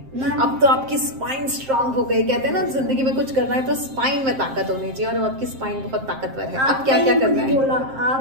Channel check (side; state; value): left; late; 7.6 ms